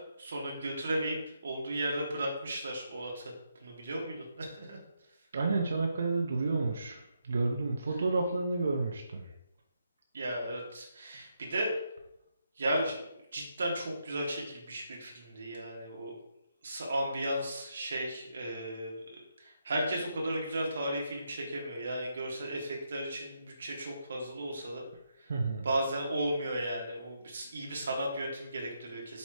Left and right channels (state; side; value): inverted; both; correlation -0.81